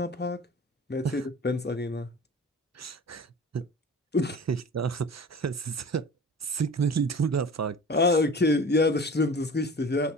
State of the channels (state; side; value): normal; both; correlation 0.39